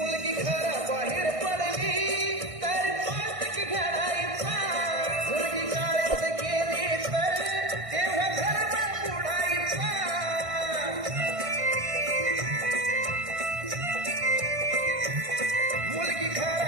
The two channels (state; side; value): late; left; 1.6 ms